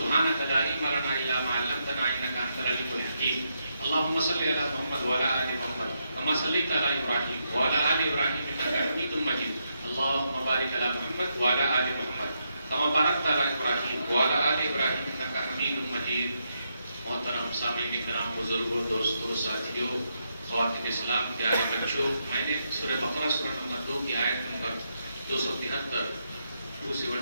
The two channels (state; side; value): inverted; both; correlation -0.81